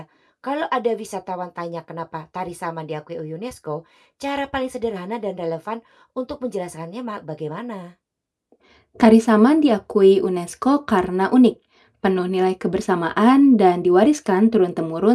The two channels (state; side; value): identical; both; correlation 1.00